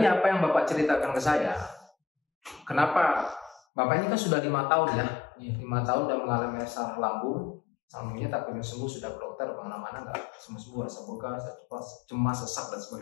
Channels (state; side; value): drops out; right; at 3.6 s